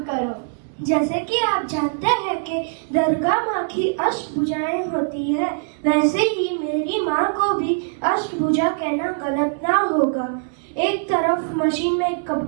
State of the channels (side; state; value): left; silent; digital silence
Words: करो। जैसे कि आप जानते हैं कि दुर्गा माँ की अष्टभुजाएं होती है, वैसे ही मेरी माँ को भी अष्टभुजा कहना गलत ना होगा। एक तरफ मशीन में